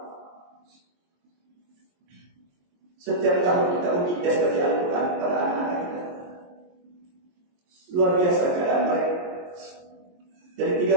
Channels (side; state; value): left; late; 22 ms